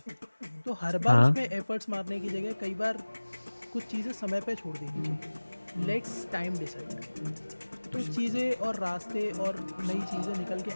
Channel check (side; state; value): both; inverted; correlation -1.00